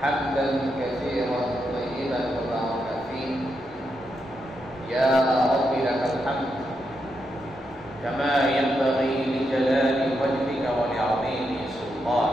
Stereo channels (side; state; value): both; normal; correlation 0.83